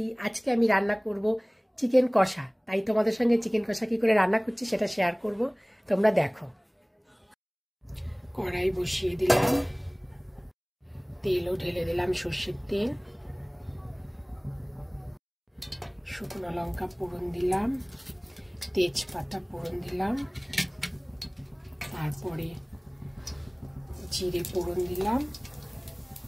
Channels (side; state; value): both; identical; correlation 1.00